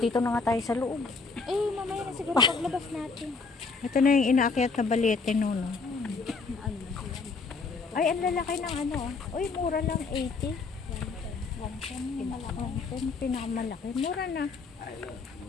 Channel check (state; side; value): quieter; right; 4.4 dB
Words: na nga tayo sa loob. Mamaya na siguro paglabas natin. Ito na yung inaakyat na Balete no. Ay, ang lalaki ng ano. Uy, mura lang 80. Yan, pinakamalaki. Mura na.